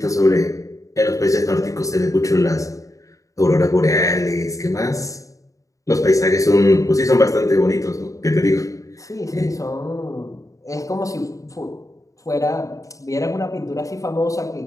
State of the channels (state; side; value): late; right; 0.16 ms